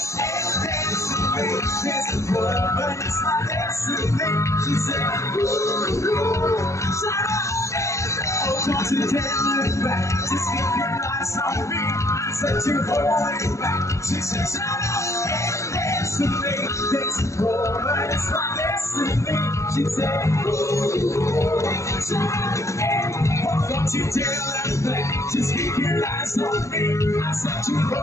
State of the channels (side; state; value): right; late; 0.14 ms